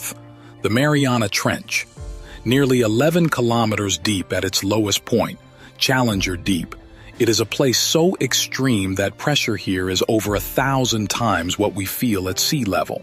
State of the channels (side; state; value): both; identical; correlation 1.00